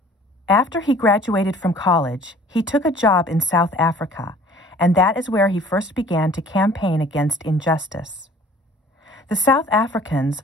After he graduated from college, he took a job in South Africa, and that is where he first began to campaign against injustice. The South Africans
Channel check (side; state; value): both; normal; correlation 0.51